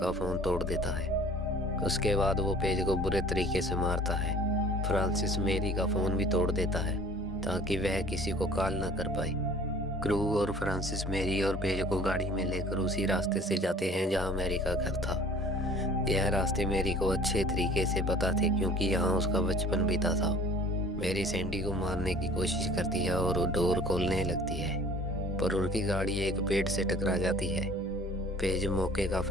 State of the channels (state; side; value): normal; both; correlation 0.49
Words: फोन तोड़ देता है। उसके बाद वो पेज को बुरे तरीके से मारता है। फ्रांसिस मैरी का फोन भी तोड़ देता है ताकि वह किसी को कॉल ना कर पाए। क्रू और फ्रांसिस मैरी और पेज को गाड़ी में लेकर उसी रास्ते से जाते हैं जहाँ मैरी का घर था। यह रास्ते मैरी को अच्छे तरीके से पता थे क्योंकि यहाँ उसका बचपन बीता था। मैरी सैंडी को मारने की कोशिश करती है और वो डोर खोलने लगती है पर उनकी गाड़ी एक पेड़ से टकरा जाती है। पेज मौके का